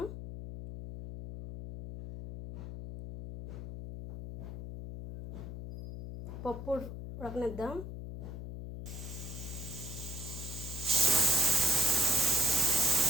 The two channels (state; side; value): noise; left; hum, 9 dB below the sound